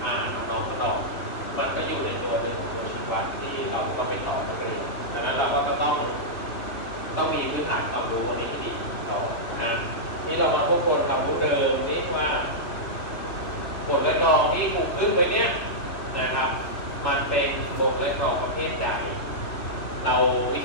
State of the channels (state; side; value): late; right; 2.7 ms